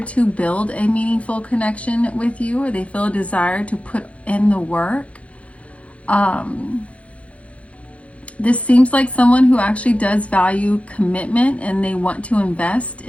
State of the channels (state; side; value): late; right; 0.063 ms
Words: to build a meaningful connection with you, or they feel a desire to put in the work. This seems like someone who actually does value commitment, and they want to invest